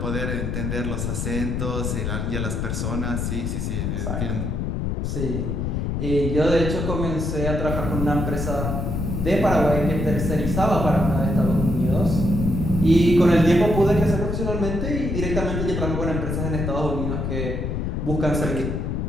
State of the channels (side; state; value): left; noise; rumble, 1 dB below the sound